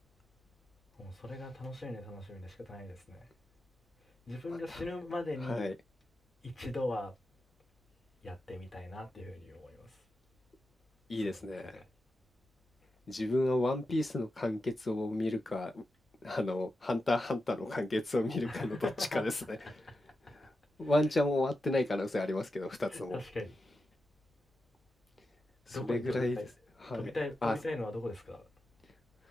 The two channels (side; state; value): both; normal; correlation 0.90